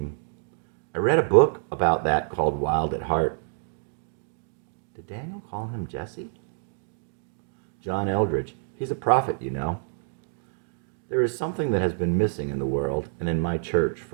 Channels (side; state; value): left; silent; digital silence